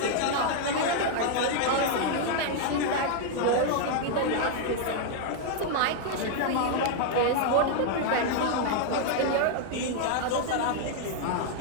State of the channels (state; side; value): different; both; correlation 0.00